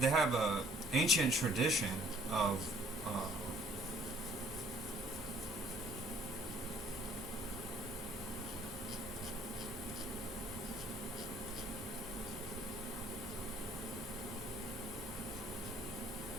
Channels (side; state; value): both; normal; correlation 0.60